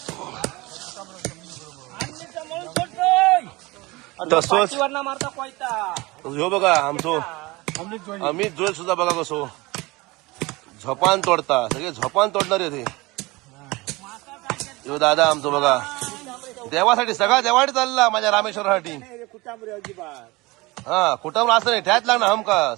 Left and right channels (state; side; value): quieter; left; 22.6 dB